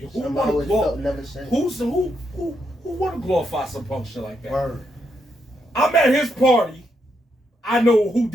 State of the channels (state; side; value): normal; both; correlation 0.80